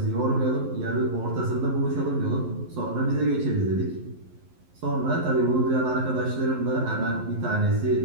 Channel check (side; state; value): left; late; 11 ms